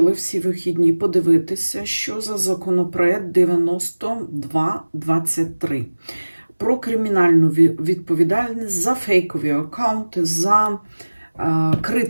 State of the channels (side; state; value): both; inverted; correlation -1.00